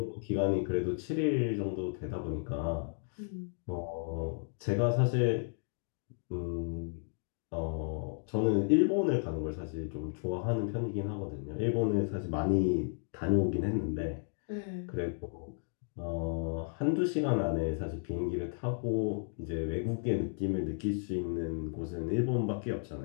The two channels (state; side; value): silent; right; digital silence